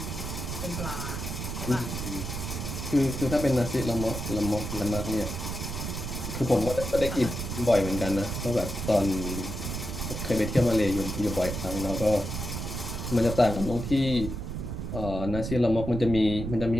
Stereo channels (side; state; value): right; noise; rumble, 5 dB below the sound